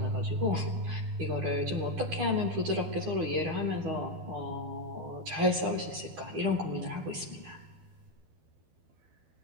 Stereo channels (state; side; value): late; left; 12 ms